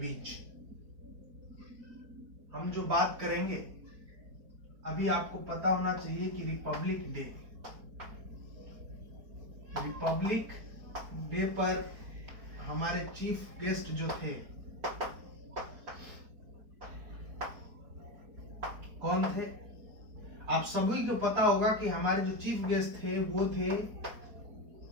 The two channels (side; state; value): left; late; 4.4 ms